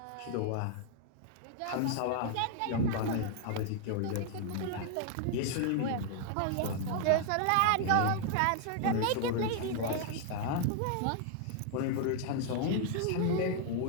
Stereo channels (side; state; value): both; different; correlation 0.00